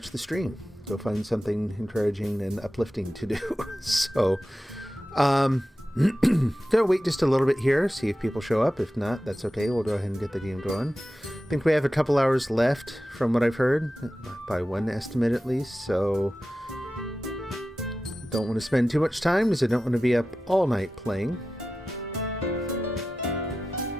the stream. Go find something encouraging and uplifting to do. So, gonna wait just a little bit here, see if people show up. If not, that's okay. We'll go ahead and get the game going. I think we have a couple hours left from what I've heard, by one estimate at least. So, don't want to spend too much time because I don't want to be up all night playing.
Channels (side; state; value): both; normal; correlation 0.93